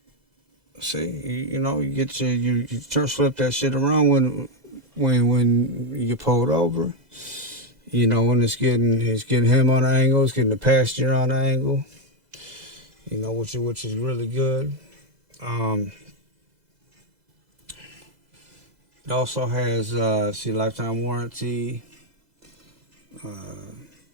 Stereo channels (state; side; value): late; left; 2.0 ms